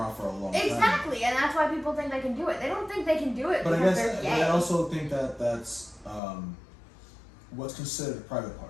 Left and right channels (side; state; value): right; drops out; at 6.2 s